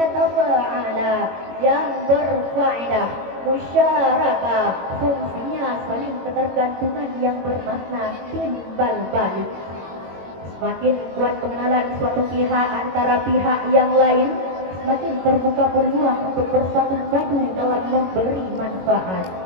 tafa'ala yang berfaedah musyarakah, fungsinya saling ketergantungan yang bermakna timbal balik. Semakin kuat pengenalan suatu pihak antara pihak yang lain, semakin terbuka peluang untuk bersatu padu dalam memberi manfaat.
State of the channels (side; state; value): left; late; 22 ms